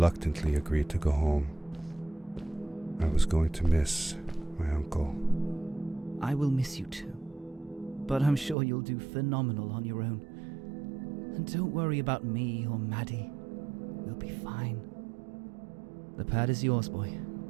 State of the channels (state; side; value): drops out; left; at 8.6 s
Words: agreed to go home. I was going to miss my uncle. I will miss you too. But I'm sure you'll do phenomenal on your own. And don't worry about me or Maddie. We'll be fine. The pad is yours, boy.